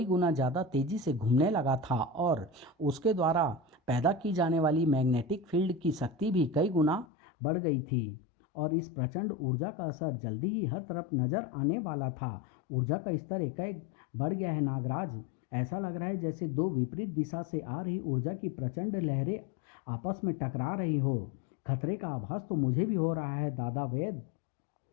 गुना ज़्यादा तेज़ी से घूमने लगा था और उसके द्वारा पैदा की जाने वाली मैग्नेटिक फील्ड की शक्ति भी कई गुना बढ़ गई थी। और इस प्रचंड ऊर्जा का असर जल्दी ही हर तरफ नजर आने वाला था। ऊर्जा का स्तर एकाएक बढ़ गया है नागराज। ऐसा लग रहा है जैसे दो विपरीत दिशा से आ रही ऊर्जा की प्रचंड लहरें आपस में टकरा रही हो। खतरे का आभास तो मुझे भी हो रहा है दादा वैद।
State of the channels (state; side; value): drops out; right; at 7.1 s